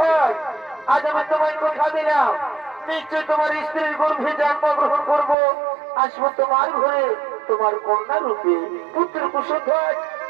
আজ আমি তোমায় কথা দিলাম নিশ্চয় তোমার স্ত্রীর গর্ভে জন্মগ্রহণ করবো আসবো তোমার ঘরে তোমার কন্যা রূপে পুত্র কুশলধর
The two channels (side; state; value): left; drops out; at 5.4 s